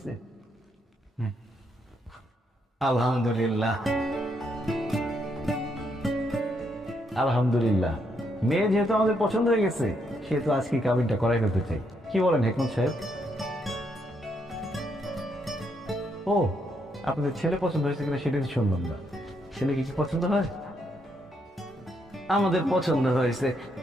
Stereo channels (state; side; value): normal; both; correlation 0.76